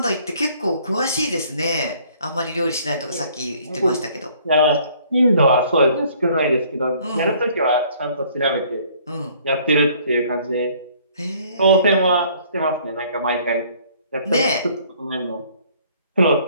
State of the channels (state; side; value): inverted; both; correlation -0.59